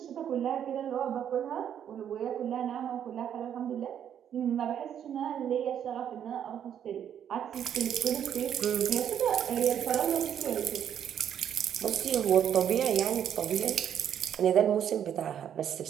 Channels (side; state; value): left; quieter; 9.3 dB